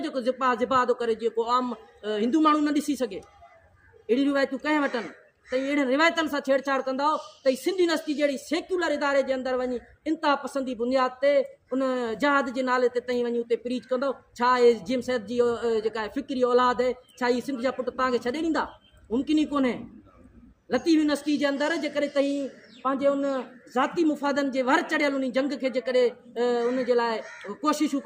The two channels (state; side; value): identical; both; correlation 1.00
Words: जेको ज़िबा थो करे, जेको आम हिंदू माण्हू न ॾिसी सघे, अहिड़ी रिवायतूं कंहिं वटनि। त अहिड़े रिवायतनि सां छेड़छाड़ कंदो त सिंधी यूनिवर्सिटी जहिड़ी सेक्युलर इदारे जे अंदरि वञी इंतिहा पसंदी बुनियाद ते उन जहाद जे नाले ते तई वञी उते प्रीच कंदो। छा इहे जिम सैद जी जेका फिक्री औलाद आहे, छा इहे सिंध जा पुट तव्हांखे छॾे ॾींदा? मुमकिन ई कोन्हे। लतीफ़ यूनिवर्सिटी जे अंदरि जेकॾहिं तई पंहिंजे उन ज़ाती मुफ़ादनि जे वर चढ़ियल उन जंग खे जेकॾहिं उन जे लाइ कोशिशूं